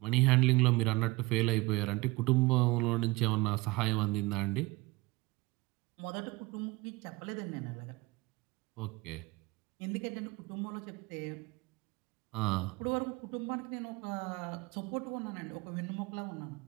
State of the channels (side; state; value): left; quieter; 22.9 dB